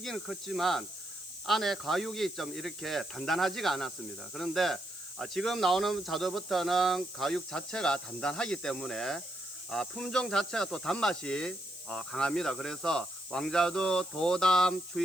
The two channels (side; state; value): left; noise; hiss, 15 dB below the sound